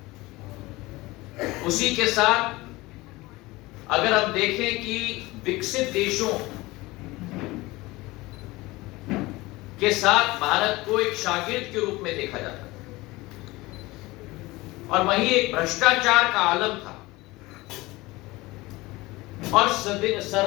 उसी के साथ अगर हम देखें कि विकसित देशों के साथ भारत को एक शागिर्द के रूप में देखा जाता था, और वहीं एक भ्रष्टाचार का आलम था, और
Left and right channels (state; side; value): quieter; right; 20.8 dB